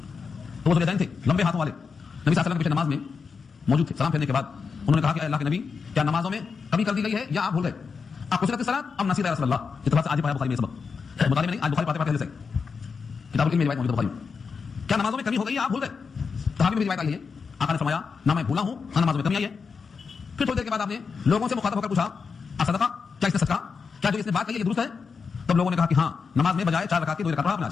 تو وہ ذواليدين تھے لمبے ہاتھوں والے، نبی صلی اللہ علیہ وسلم کے پیچھے نماز میں موجود تھے. سلام پھیرنے کے بعد انہوں نے کہا کہ اللہ کے نبی کیا نمازوں میں کمی کر دی گئی ہے یا آپ بھول گئے؟ آپ کثرت الصلاۃ ام نسیت یا رسول اللہ. یہ تو آج پڑھا بخاری میں سبق مطالعے میں نہیں، آج بخاری پڑھتے پڑھتے سے کتاب العلم میں روایت موجود ہے بخاری میں. کیا نمازوں میں کمی ہو گئی یا آپ بھول گئے؟ صحابی میں روایت آئی ہے، آقا نے فرمایا نہ میں بھولا ہوں نہ نمازوں میں کمی آئی ہے. پھر تھوڑی دیر کے بعد آپ نے لوگوں سے مخاطب ہو کر پوچھا صدقہ، کیا اس نے صدقہ، کیا جو اس نے بات کہی ہے یہ درست ہے؟ تب لوگوں نے کہا کہ ہاں نماز میں بجائے 4 رکعت کی 2 رکعت پڑھا آپ نے.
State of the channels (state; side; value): quieter; right; 5.4 dB